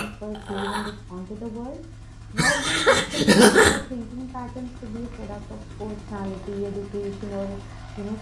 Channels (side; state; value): both; identical; correlation 1.00